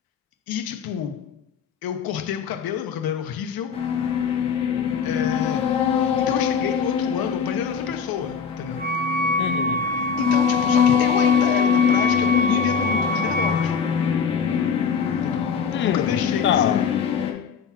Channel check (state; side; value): quieter; right; 6.3 dB